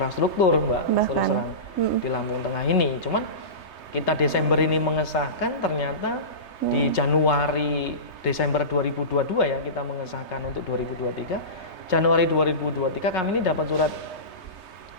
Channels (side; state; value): right; late; 3.3 ms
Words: Mbak, di Lampung Tengah ini. Cuman kita Desember ini mengesahkan, ternyata di Desember 2022 ya kita mengesahkan untuk 2023. Januari 2023 kami ini dapat surat